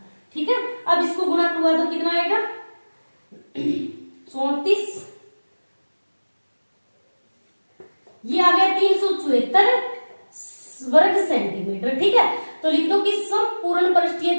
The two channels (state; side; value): inverted; both; correlation -1.00